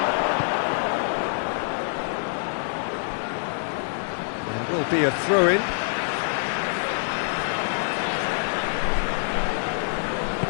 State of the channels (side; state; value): right; silent; 61 dB below the other